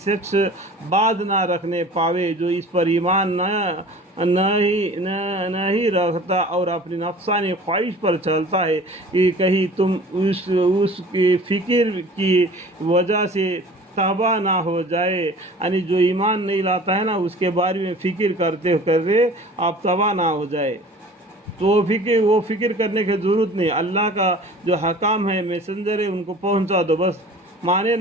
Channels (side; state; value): both; normal; correlation 0.44